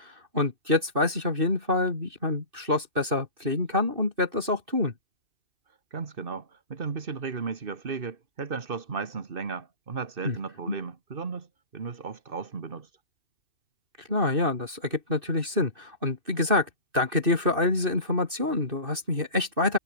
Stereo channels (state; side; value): late; left; 2.6 ms